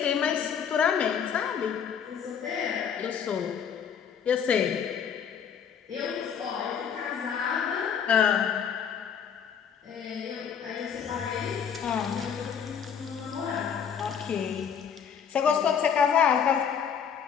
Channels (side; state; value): right; quieter; 7.6 dB